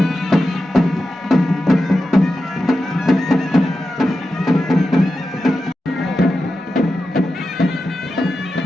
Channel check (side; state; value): both; normal; correlation 0.91